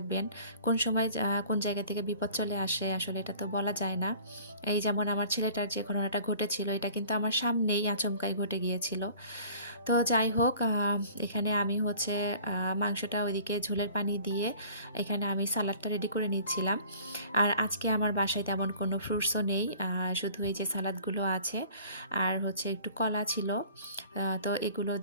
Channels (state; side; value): inverted; both; correlation -0.48